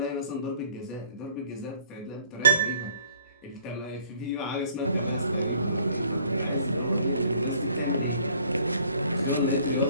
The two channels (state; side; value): inverted; both; correlation -0.58